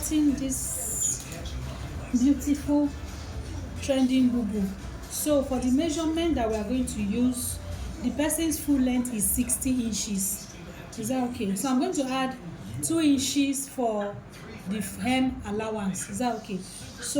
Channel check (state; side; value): identical; both; correlation 1.00